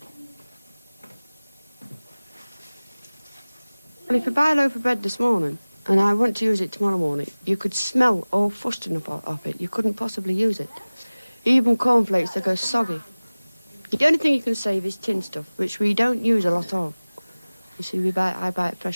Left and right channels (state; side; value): inverted; both; correlation -1.00